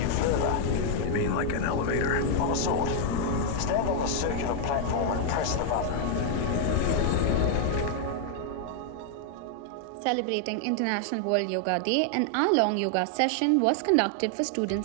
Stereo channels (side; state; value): both; different; correlation 0.00